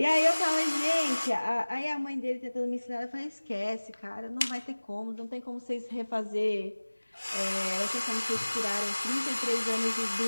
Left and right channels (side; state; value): both; inverted; correlation -1.00